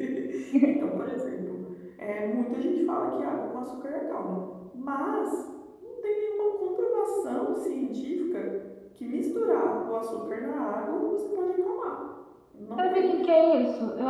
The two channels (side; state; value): both; identical; correlation 1.00